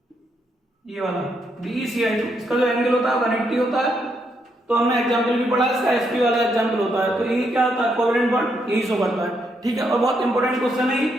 ये वाला BeCl2, इसका जो एंगल होता है 180 होता है। तो हमने एग्जांपल भी पढ़ा, इसका sp वाला एग्जांपल होता है। तो ये क्या होता है कोवेलेंट बॉन्ड, यही शो करता है। ठीक है, और बहुत इंपॉर्टेंट क्वेश्चन है।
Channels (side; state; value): both; normal; correlation 0.77